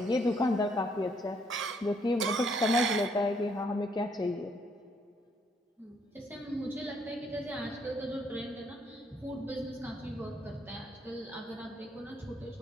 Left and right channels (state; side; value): normal; both; correlation 0.69